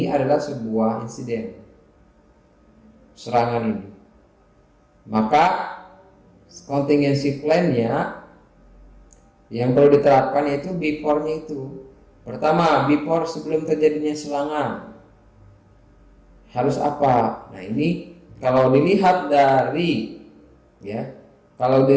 adalah sebuah insiden, serangan ini. Maka contingency plan-nya yang perlu diterapkan yaitu before-nya itu. Pertama, before sebelum terjadinya serangan harus apa? Nah, ini kalau dilihat dari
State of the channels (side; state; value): both; identical; correlation 1.00